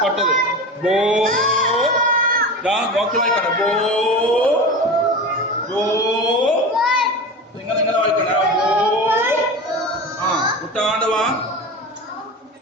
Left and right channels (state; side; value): normal; both; correlation 0.28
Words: കൊട്ടത് ബോ. നോക്കി വായിക്കണം. ബോ ഇങ്ങനെ വായിക്കണേ. ബോ കുട്ടാണ്ട് വാ.